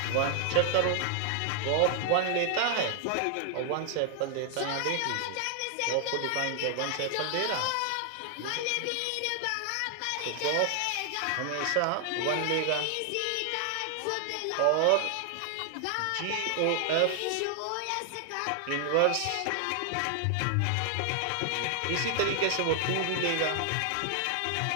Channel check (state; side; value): different; both; correlation 0.00